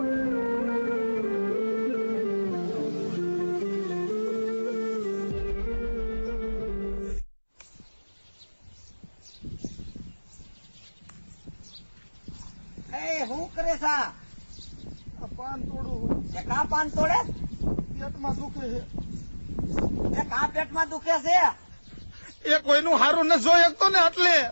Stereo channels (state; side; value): inverted; both; correlation -1.00